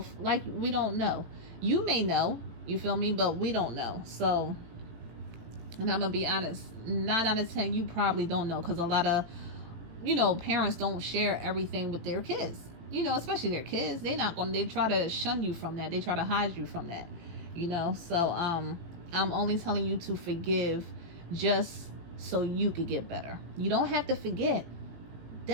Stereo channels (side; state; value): left; late; 17 ms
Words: Like, we don't know. You may know, you feel me? But we don't know. So, and I'm going to be honest, 9 out of 10, you probably don't know, because a lot of, you know, parents don't share everything with their kids. You know, especially their kids. They try to shun you from that. They try to hide you from that. You know, so I'm only telling you to forgive just so you could get better. You don't have to forget.